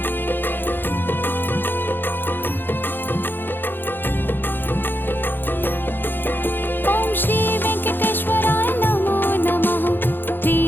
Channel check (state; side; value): late; right; 0.097 ms